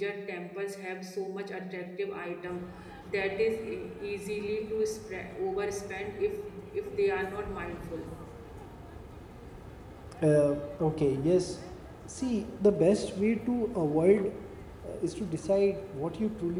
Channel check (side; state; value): both; identical; correlation 1.00